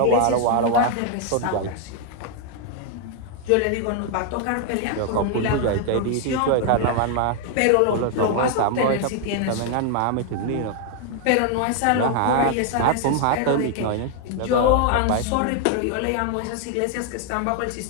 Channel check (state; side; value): different; both; correlation 0.00